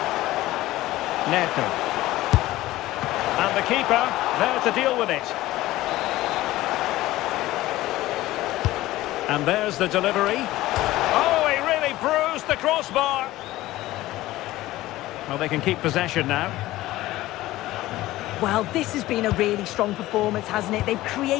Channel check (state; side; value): quieter; right; 16.7 dB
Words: Neto. And the keeper there to deal with it. And there's the delivery. Oh, he really bruised the crossbar. Well, they can keep possession now. Well, this has been a really strong performance, hasn't it? They've